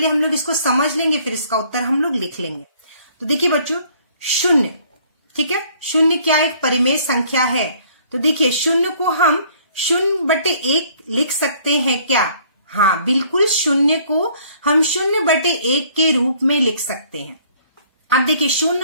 हम लोग इसको समझ लेंगे, फिर इसका उत्तर हम लोग लिख लेंगे। तो देखिए बच्चों, शून्य, ठीक है, शून्य क्या एक परिमेय संख्या है? तो देखिए शून्य को हम 0/1 लिख सकते हैं क्या? हाँ बिल्कुल, शून्य को हम 0/1 के रूप में लिख सकते हैं। अब देखिए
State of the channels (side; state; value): both; inverted; correlation -0.59